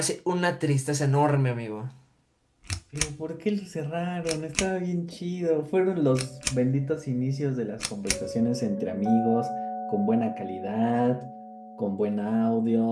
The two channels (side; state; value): both; identical; correlation 1.00